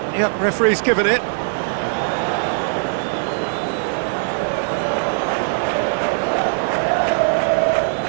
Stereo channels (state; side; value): silent; left; 61 dB below the other